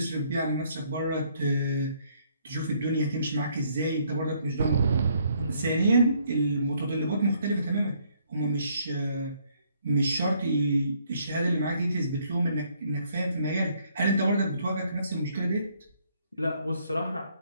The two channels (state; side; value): inverted; both; correlation -0.67